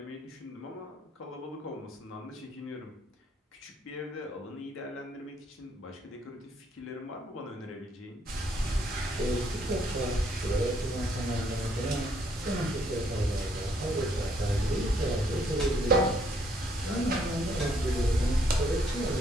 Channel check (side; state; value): both; normal; correlation 0.69